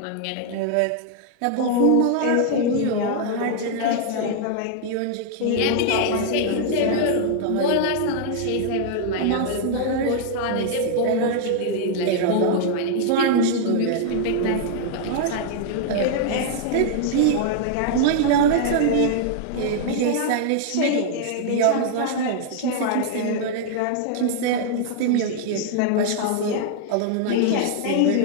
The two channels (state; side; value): different; both; correlation -0.01